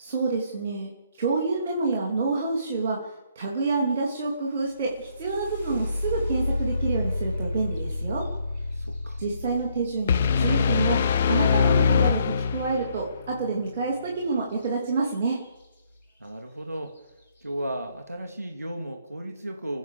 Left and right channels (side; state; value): both; inverted; correlation -0.70